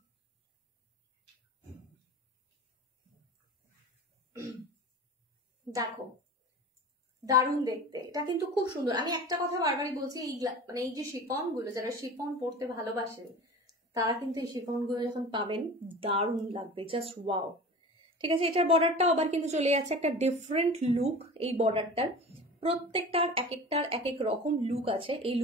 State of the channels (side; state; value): both; normal; correlation 0.37